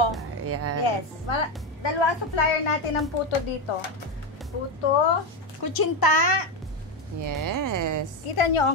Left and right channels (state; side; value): normal; both; correlation 0.12